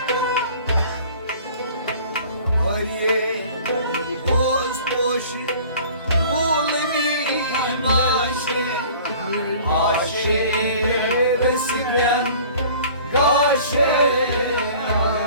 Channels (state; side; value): inverted; both; correlation -0.47